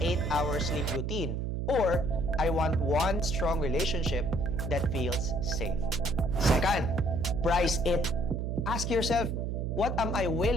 sleep routine. Or I want one strong relationship that feels safe. Second, price it. Ask yourself, what am I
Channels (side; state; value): right; noise; hum, 1 dB below the sound